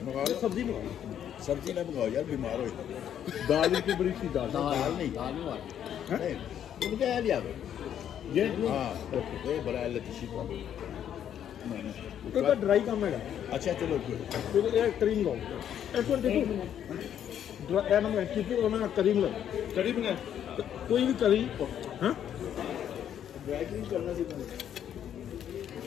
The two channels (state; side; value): quieter; right; 9.7 dB